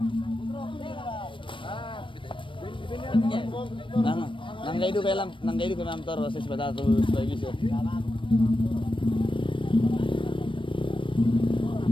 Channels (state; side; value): late; right; 0.25 ms